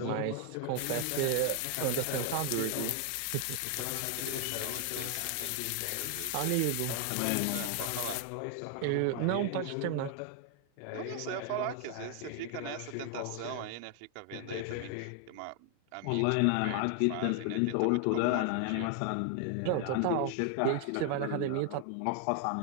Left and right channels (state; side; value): different; both; correlation 0.00